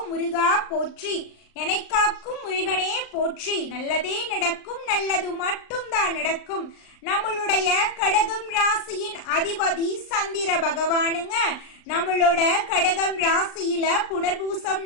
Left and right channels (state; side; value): late; right; 39 ms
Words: முருகா போற்றி. என்னை காக்கும் முருகனே போற்றி. நல்லதே நடக்கும், நல்லது மட்டும்தான் நடக்கும். நம்மளுடைய கடகம் ராசியின் அதிபதி சந்திர பகவானுங்க. நம்மளோட கடகம் ராசியில புனர்பூசம்